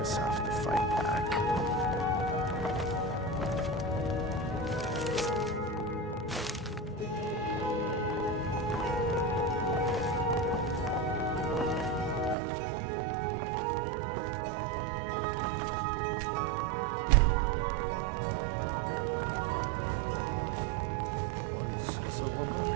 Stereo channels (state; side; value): drops out; left; at 12.4 s